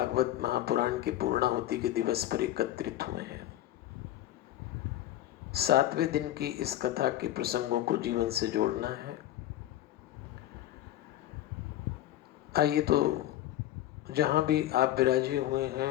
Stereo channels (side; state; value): right; quieter; 13.6 dB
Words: महापुराण की पूर्णाहुति के दिवस पर एकत्रित हुए हैं। 7वें दिन की इस कथा के प्रसंगों को जीवन से जोड़ना है। आइए तो जहां भी आप विराजे हुए